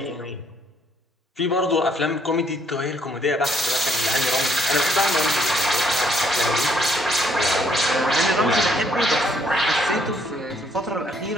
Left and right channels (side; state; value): both; normal; correlation 0.68